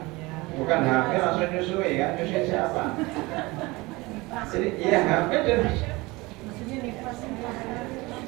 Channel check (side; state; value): left; quieter; 22.7 dB